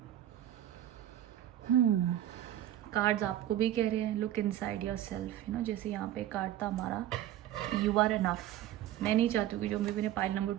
कार्ड्स आपको भी कह रहे हैं look inside your self, you know. जैसे यहाँ पे कार्ड था हमारा यू आर इनफ। मैं नहीं चाहती हूँ कि जो मेरे पाइल नंबर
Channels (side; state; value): left; quieter; 12.4 dB